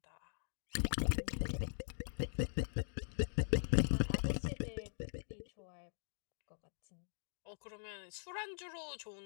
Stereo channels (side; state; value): right; silent; digital silence